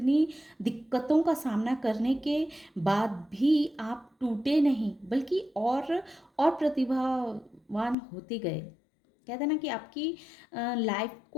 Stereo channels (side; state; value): right; drops out; at 8.0 s